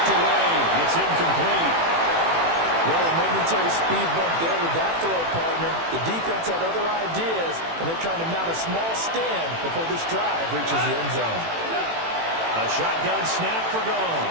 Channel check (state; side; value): late; left; 18 ms